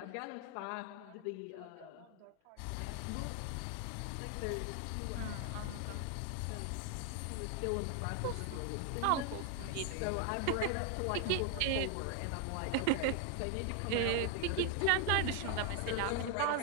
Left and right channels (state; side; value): different; both; correlation 0.00